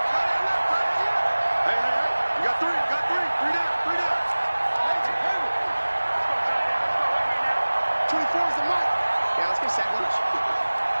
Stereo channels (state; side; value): inverted; both; correlation -1.00